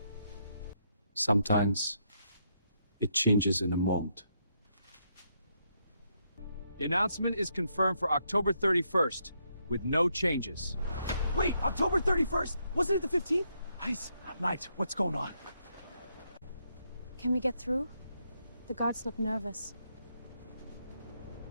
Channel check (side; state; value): both; inverted; correlation -0.77